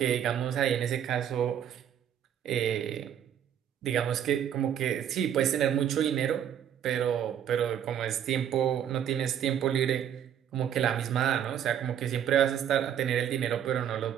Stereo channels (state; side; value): quieter; left; 9.5 dB